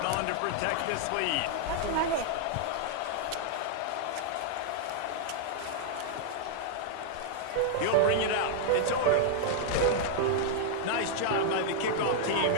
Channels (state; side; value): different; both; correlation -0.01